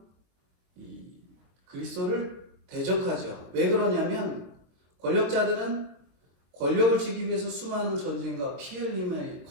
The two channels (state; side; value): late; left; 23 ms